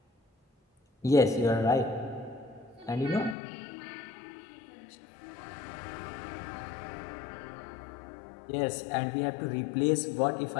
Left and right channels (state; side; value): drops out; right; at 3.4 s